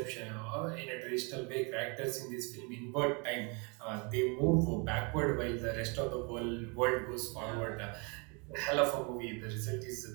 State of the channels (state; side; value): quieter; left; 32.2 dB